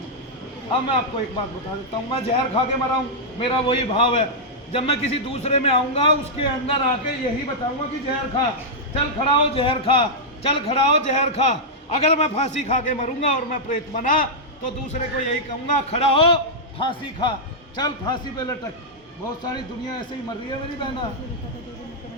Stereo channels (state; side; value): normal; both; correlation -0.07